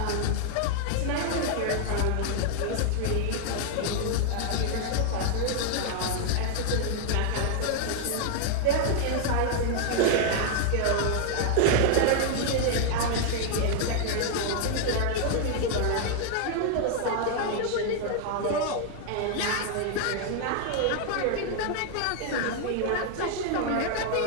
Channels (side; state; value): both; different; correlation 0.00